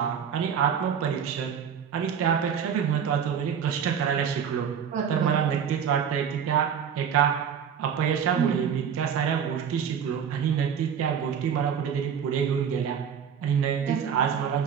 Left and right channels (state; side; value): quieter; left; 7.7 dB